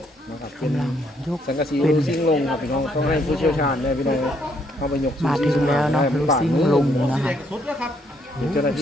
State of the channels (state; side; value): normal; both; correlation 0.71